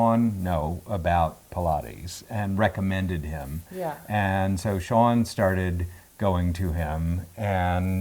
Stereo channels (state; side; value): identical; both; correlation 1.00